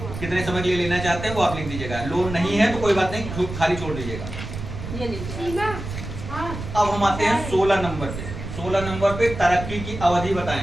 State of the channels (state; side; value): noise; right; rumble, 8 dB below the sound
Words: कितने समय के लिए लेना चाहते हैं वो आप लिख दीजिएगा। लोन नहीं है तो कोई बात नहीं, खाली छोड़ दीजिएगा। अब हम आते हैं 16 नंबर पे। 16 नंबर पे तरक्की की अवधि